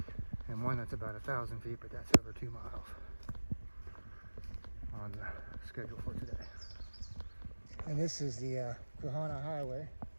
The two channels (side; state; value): both; inverted; correlation -1.00